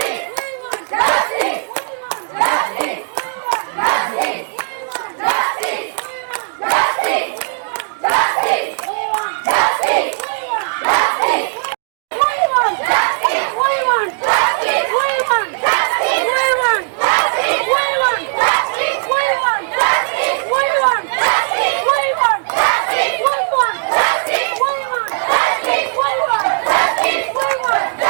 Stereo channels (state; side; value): silent; left; digital silence